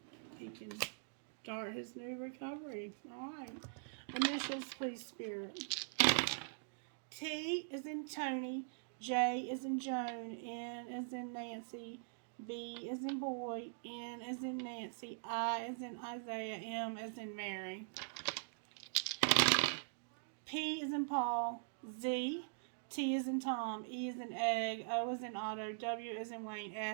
he can start his new recovery. Alright. Initials, please, Spirit. T is in Tony. J is in Joan. N is in Nancy. B is in boy. N is in Nancy. I is in Isaiah. M is in Mary. P is in Paul. Z. T is in Tom. E is in egg. O is in Otto. W is in Wayne.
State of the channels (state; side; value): silent; left; digital silence